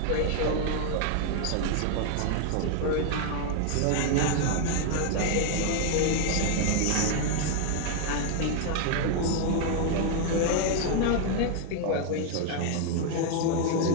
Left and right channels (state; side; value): different; both; correlation 0.00